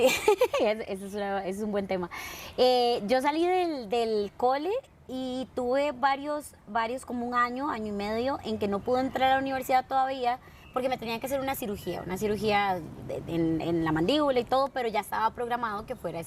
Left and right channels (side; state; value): both; identical; correlation 1.00